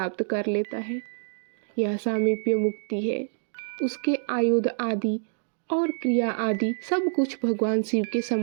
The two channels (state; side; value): silent; left; digital silence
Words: कर लेता है। यह सामीप्य मुक्ति है। उसके आयुध आदि और क्रिया आदि सब कुछ भगवान शिव के